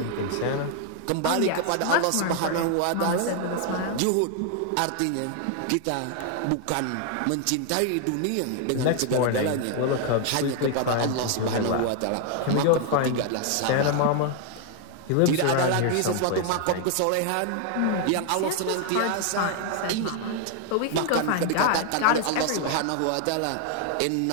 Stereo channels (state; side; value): different; both; correlation 0.00